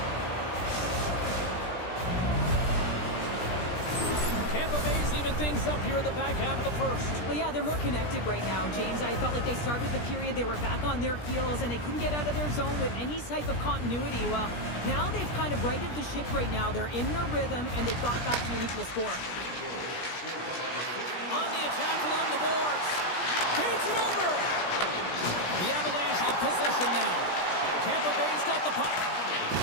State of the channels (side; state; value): right; late; 17 ms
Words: Tampa Bay's even things up here in the back half of the first. Well, yeah, they're more connected right now, James. I felt like they started the period, they were back on their heels, and they couldn't get out of their zone with any type of continuity. Well, now they've kind of righted the ship right now. They're in their rhythm, and they've got back to an equal score. On the attack along the boards. Feeds it over. The Avalanche have possession now. Tampa Bay's got the puck.